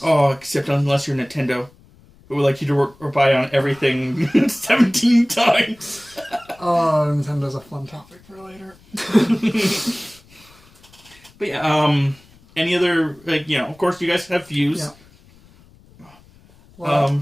Oh, except unless you're Nintendo, who would like you to work or buy on everything 17 times. Oh, Nintendo's a fun topic for later. But yeah, any other, of course you guys have views. Yeah. Well,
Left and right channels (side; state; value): left; noise; rumble, 27 dB below the sound